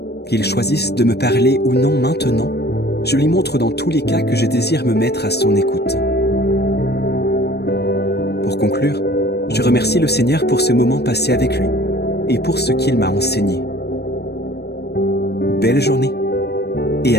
Qu'il choisisse de me parler ou non maintenant, je lui montre dans tous les cas que je désire me mettre à son écoute. Pour conclure, je remercie le Seigneur pour ce moment passé avec lui et pour ce qu'il m'a enseigné. Belle journée et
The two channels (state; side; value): late; right; 0.48 ms